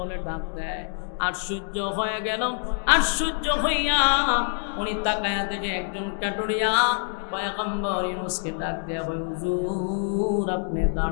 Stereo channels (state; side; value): silent; right; 61 dB below the other